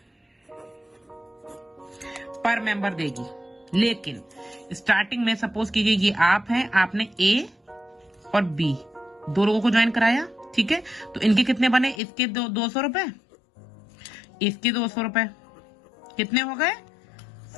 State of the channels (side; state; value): right; drops out; at 12.0 s